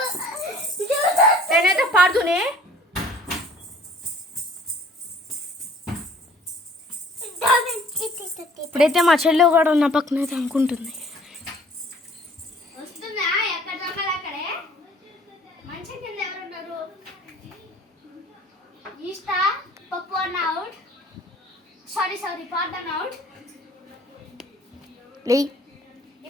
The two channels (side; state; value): both; normal; correlation 0.54